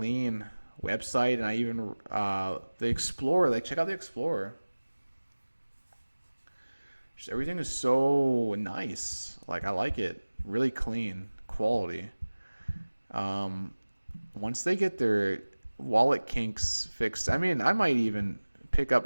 website, and I even the Explorer. Check out the Explorer. Just everything is so nice. I like it. Really clean, quality. Once they get their wallet kinks fixed, I mean, I might even pick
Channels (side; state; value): both; inverted; correlation -1.00